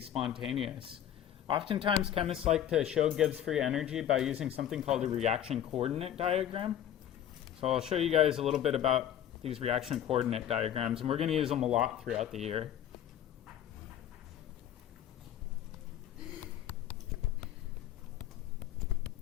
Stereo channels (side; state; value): right; quieter; 10.5 dB